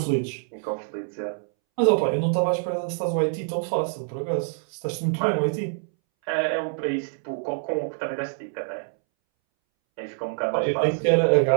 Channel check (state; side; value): silent; left; 61 dB below the other